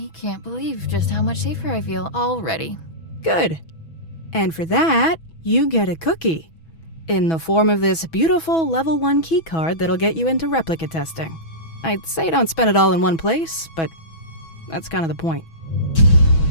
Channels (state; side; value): late; right; 6.1 ms